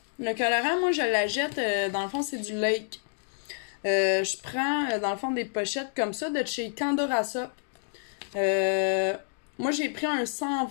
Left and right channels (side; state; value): right; silent; digital silence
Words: Le colorant, moi je l'achète, dans le fond c'est du Lake. Je prends dans le fond des pochettes comme ça de chez Candora Soap. Moi j'ai pris un